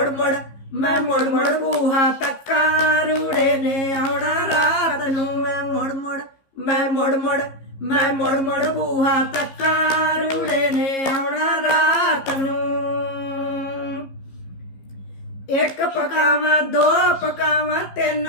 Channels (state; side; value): late; right; 15 ms